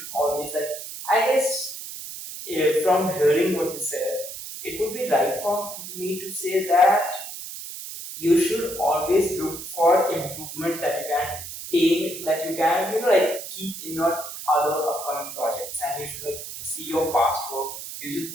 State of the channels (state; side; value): noise; right; hiss, 10 dB below the sound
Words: always I guess from hearing what you said, it would be right for me to say that you should always look for improvement that you can aim, that you can, like keep in your other upcoming projects, and you should like see your past work. You should